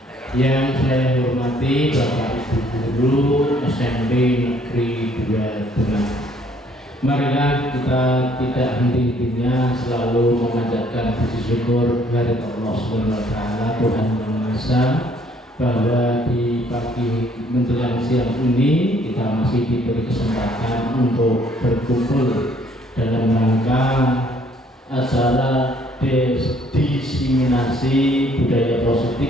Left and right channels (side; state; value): both; normal; correlation 0.62